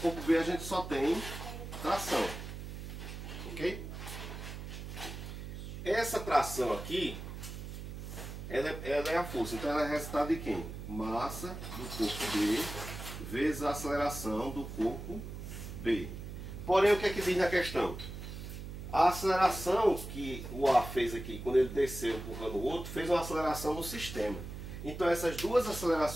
B a gente só tem tração. Ok? Essa tração aqui, ela é a força. Então ela é resultado de quem? Massa do corpo B vezes a aceleração do corpo B. Porém, o que é que diz na questão? A aceleração que o A fez aqui, quando ele desceu empurrando o outro, fez uma aceleração no sistema. Então essas duas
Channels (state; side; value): noise; right; hum, 9 dB below the sound